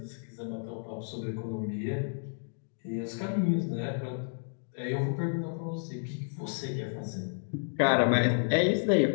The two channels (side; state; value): right; silent; digital silence